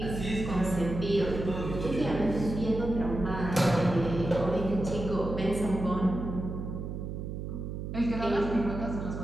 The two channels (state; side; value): noise; right; hum, 6 dB below the sound